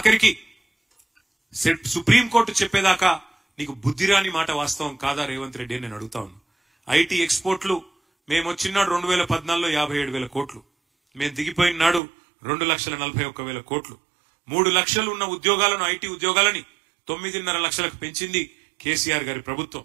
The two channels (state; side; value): drops out; left; at 12.0 s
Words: సుప్రీంకోర్టు చెప్పేదాకా నీకు బుద్ధిరాని మాట వాస్తవం కాదా రేవంత్ రెడ్డి అని నేను అడుగుతా ఉన్నా. IT ఎక్స్పోర్ట్లు మేము వచ్చినాడు 2014లో 57,000 కోట్లు, మేము దిగిపోయిన నాడు 2,41,000 కోట్లు. 3 లక్షలు ఉన్న ఉద్యోగాలను, IT ఉద్యోగాలని 9.5 లక్షలకు పెంచింది కేసీఆర్ గారి ప్రభుత్వం.